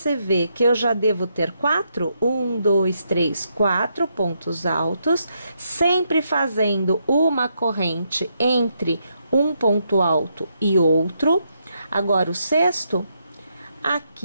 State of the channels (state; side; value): inverted; both; correlation -0.79